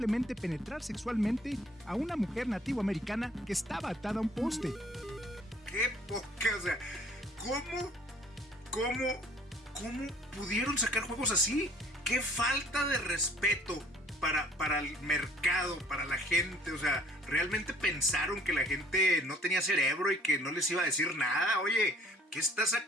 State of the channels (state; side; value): normal; both; correlation 0.55